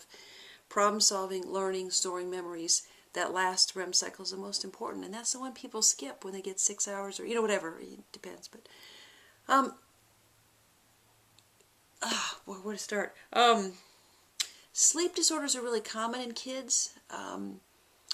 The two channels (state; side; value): identical; both; correlation 1.00